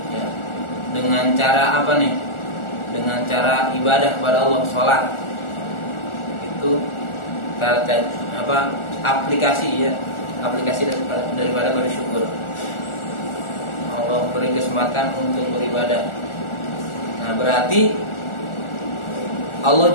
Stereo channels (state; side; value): late; right; 1.4 ms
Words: Ya. Dengan cara apa nih? Dengan cara ibadah kepada Allah, sholat. Itu apa? Aplikasi ya, aplikasi daripada bersyukur. Allah beri kesempatan untuk beribadah. Nah, berarti Allah